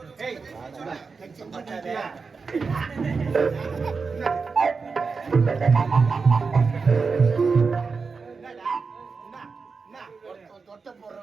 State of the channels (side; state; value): left; quieter; 4.8 dB